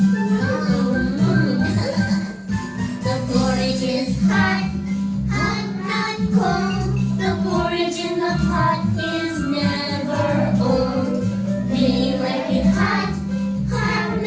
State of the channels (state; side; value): identical; both; correlation 1.00